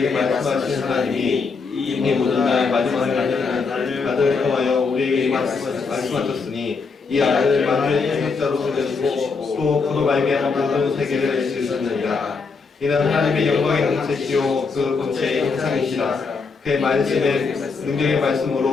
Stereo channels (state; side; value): quieter; right; 4.8 dB